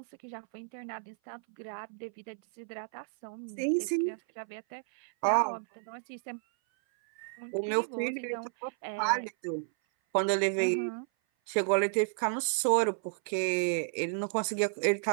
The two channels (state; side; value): silent; left; 56 dB below the other